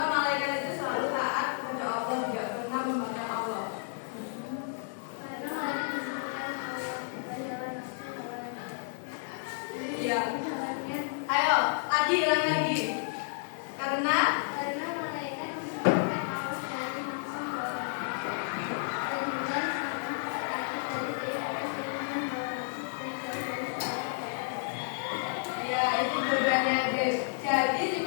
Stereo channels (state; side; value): silent; right; 57 dB below the other